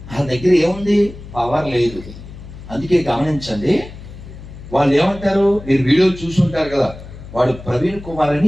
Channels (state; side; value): noise; left; hum, 15 dB below the sound